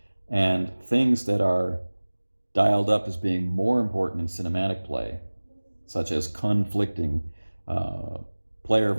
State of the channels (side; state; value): both; inverted; correlation -1.00